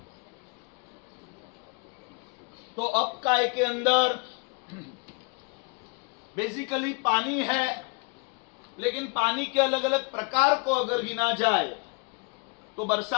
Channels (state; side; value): quieter; right; 34.0 dB